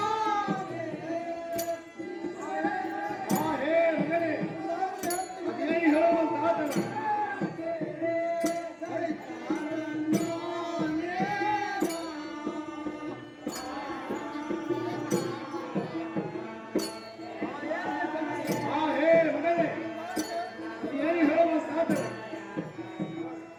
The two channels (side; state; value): both; identical; correlation 1.00